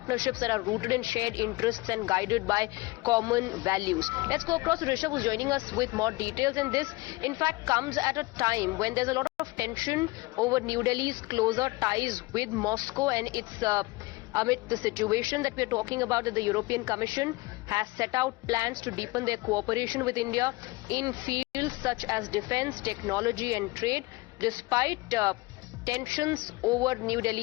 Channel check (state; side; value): quieter; right; 22.3 dB